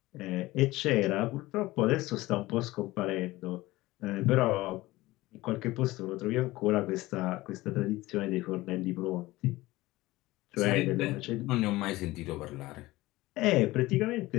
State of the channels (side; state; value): right; quieter; 18.9 dB